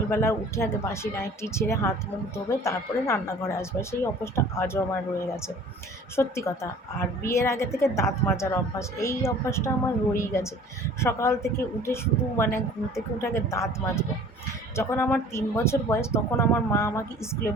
উঠে আগে বাসি নাইটি ছেড়ে হাত মুখ ধোবে, তারপরে রান্নাঘরে আসবে। সেই অভ্যাসটা আজও আমার রয়ে গেছে, সত্যি কথা। আর বিয়ের আগে থেকে দাঁত মাজার অভ্যাস, এই অভ্যাসটা আমার রয়েই গেছে। সকাল থেকে উঠে শুধু মানে ঘুম থেকে উঠে আগে দাঁত মাজবো। যখন আমার 3 বছর বয়স, তখন আমার মা আমাকে স্কুলে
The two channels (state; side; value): normal; both; correlation 0.48